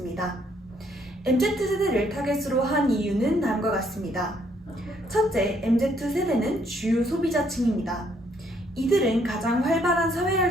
MZ세대를 타겟으로 한 이유는 다음과 같습니다. 첫째, MZ세대는 주요 소비자층입니다. 이들은 가장 활발한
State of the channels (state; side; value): normal; both; correlation 0.69